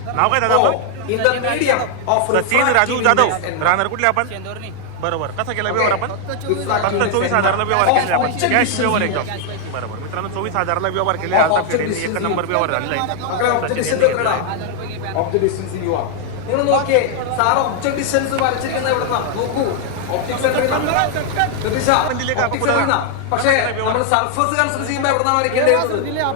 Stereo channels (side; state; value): both; different; correlation 0.00